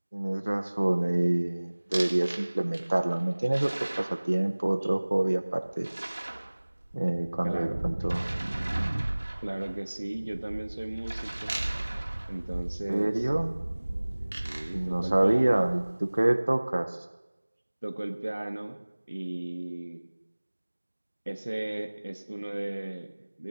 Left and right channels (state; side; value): inverted; both; correlation -1.00